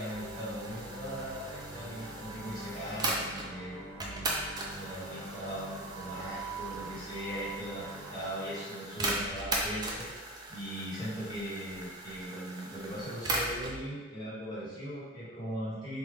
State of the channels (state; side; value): normal; both; correlation 0.27